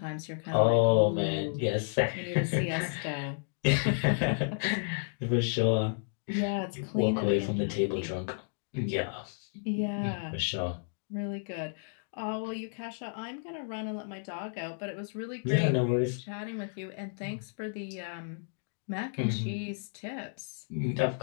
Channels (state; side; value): silent; right; digital silence